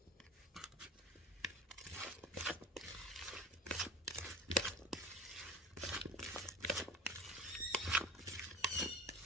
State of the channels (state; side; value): normal; both; correlation 0.36